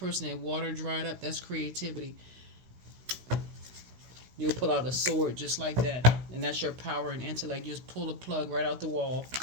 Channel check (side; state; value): left; late; 16 ms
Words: that water dried up? That's creativity. You'll pull out a sword just like that, and that's your power and intellect. You just pull a plug right out the wall.